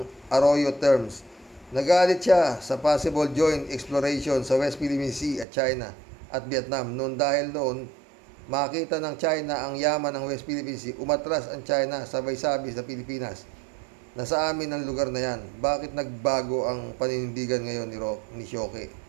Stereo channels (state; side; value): drops out; left; at 5.5 s